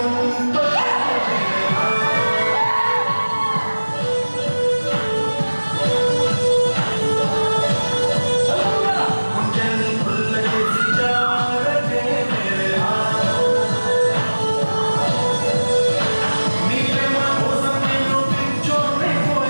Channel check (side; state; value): both; inverted; correlation -1.00